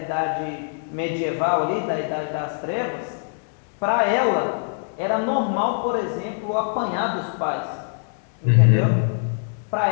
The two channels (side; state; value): right; silent; digital silence